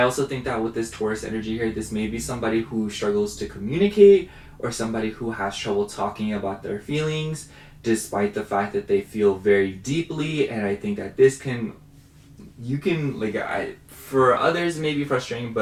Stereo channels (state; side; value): identical; both; correlation 1.00